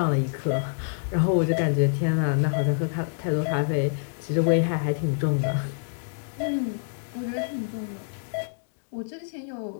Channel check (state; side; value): silent; right; digital silence